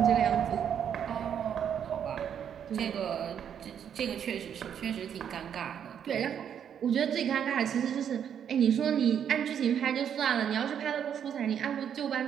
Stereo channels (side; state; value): left; quieter; 8.6 dB